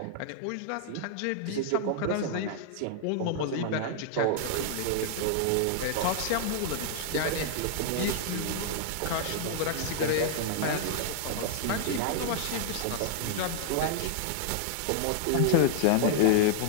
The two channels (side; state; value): both; different; correlation -0.01